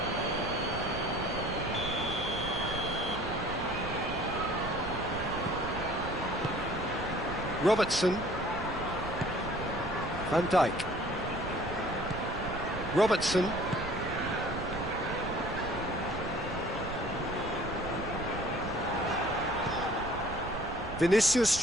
Robertson. Van Dijk. Robertson.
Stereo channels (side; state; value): right; noise; rumble, 10 dB below the sound